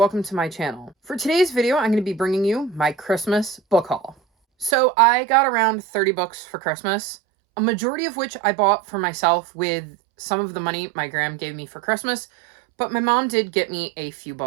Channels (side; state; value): left; drops out; at 4.8 s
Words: to my channel. For today's video, I'm going to be bringing you my Christmas book haul. So I got around 30 books for Christmas, a majority of which I bought for myself with some of the money my gram gave me for Christmas, but my mom did get me a few